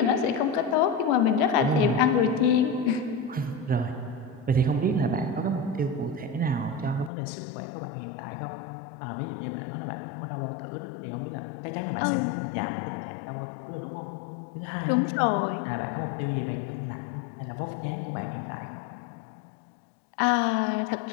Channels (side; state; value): right; drops out; at 7.1 s